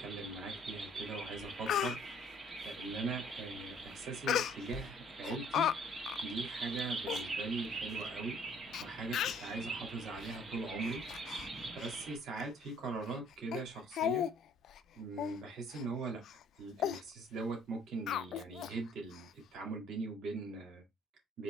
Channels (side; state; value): both; normal; correlation 0.59